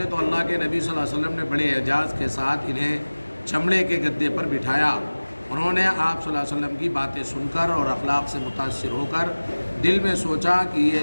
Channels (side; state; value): both; inverted; correlation -1.00